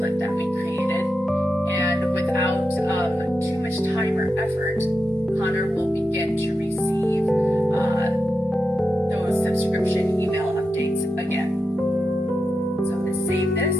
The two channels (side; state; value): both; normal; correlation 0.88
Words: that we created, and without too much time or effort, Connor will begin to receive those subscription email updates again. So I'm going to save this.